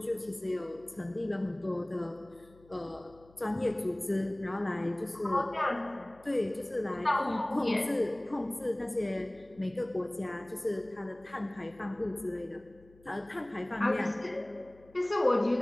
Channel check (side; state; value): left; noise; hum, 26 dB below the sound